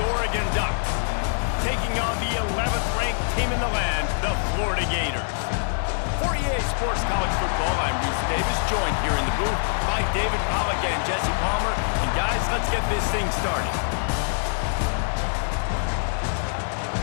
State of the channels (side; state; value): right; silent; digital silence